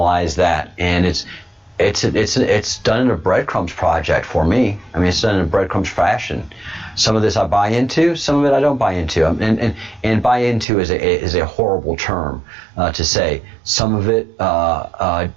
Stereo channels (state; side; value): drops out; left; at 10.7 s